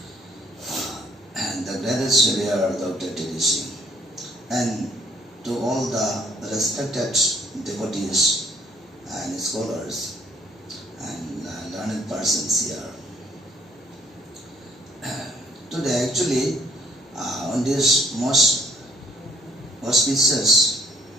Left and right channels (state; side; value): normal; both; correlation 0.63